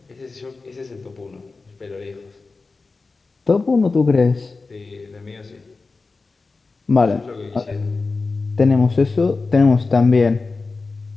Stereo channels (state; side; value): quieter; right; 3.9 dB